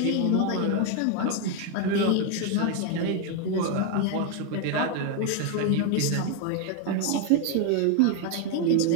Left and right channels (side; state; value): both; different; correlation 0.01